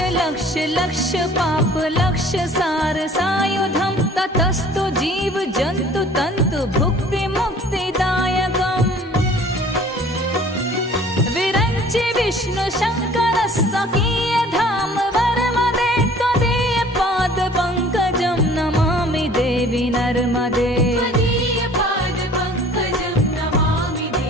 लक्ष लक्ष पाप लक्ष सार सायुधम ततस्तु जीव जंतु तंतु भुक्ति मुक्तिदायकम् विरंचि विष्णु शंकर सकीय धाम वर्मदे त्वदीय पाद पंकजं नमामि देवी नर्मदे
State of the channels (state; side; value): normal; both; correlation 0.51